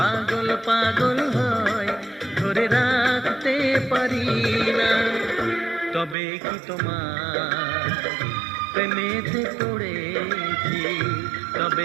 পাগল হয়, ধরে রাখতে পারি না। তবে কি তোমার প্রেমেতে পড়েছি,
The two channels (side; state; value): left; drops out; at 6.2 s